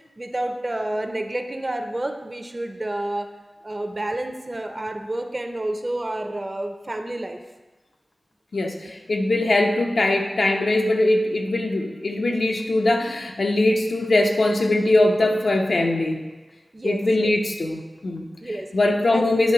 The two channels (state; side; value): normal; both; correlation 0.95